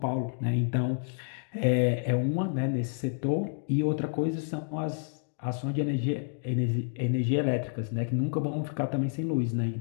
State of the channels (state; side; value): silent; right; digital silence